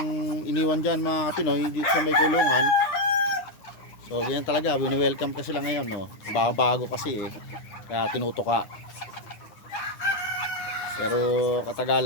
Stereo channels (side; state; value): right; late; 9.9 ms